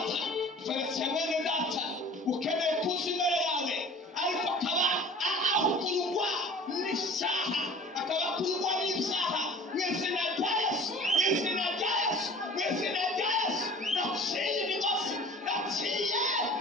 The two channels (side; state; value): both; normal; correlation 0.44